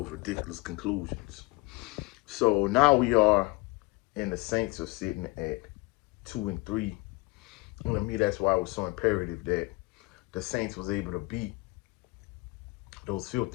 ridiculous conclusions. So now we are, and the Saints are sitting at 2-3. And to me, that's why it was so imperative that the Saints was able to beat those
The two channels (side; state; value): right; quieter; 23.8 dB